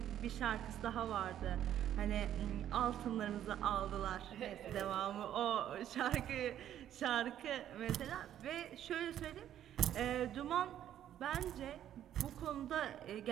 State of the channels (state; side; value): quieter; left; 11.1 dB